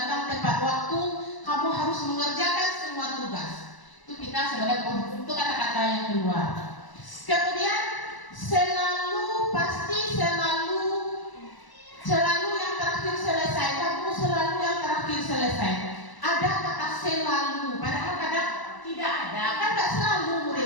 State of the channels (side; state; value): right; late; 1.0 ms